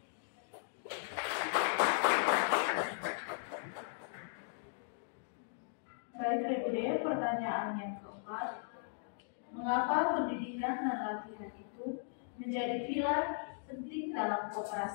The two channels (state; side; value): silent; right; digital silence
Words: Baik, Regup, pertanyaan yang keempat. Mengapa pendidikan dan latihan itu menjadi pilar penting dalam